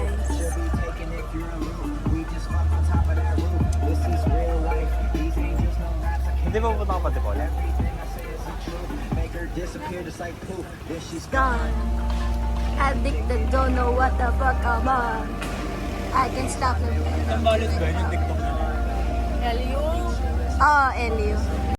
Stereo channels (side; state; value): both; identical; correlation 1.00